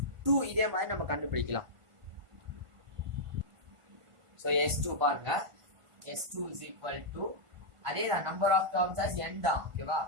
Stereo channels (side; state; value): left; late; 1.5 ms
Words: இதே மாதிரி நம்ம கண்டுபிடிக்கலாம் so s2 பாருங்க s2 is equal to அதே தான் number of terms as n தான் ஓகேவா